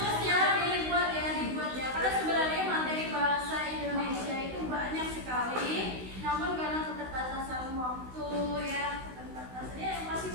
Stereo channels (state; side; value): late; left; 16 ms